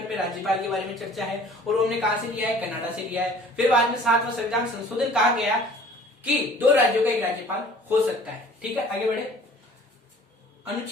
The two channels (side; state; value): both; normal; correlation 0.50